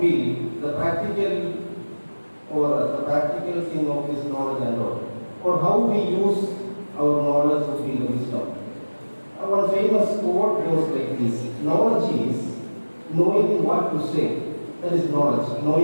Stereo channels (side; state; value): both; inverted; correlation -1.00